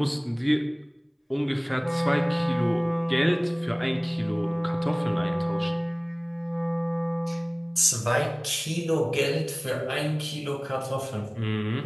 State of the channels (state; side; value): identical; both; correlation 1.00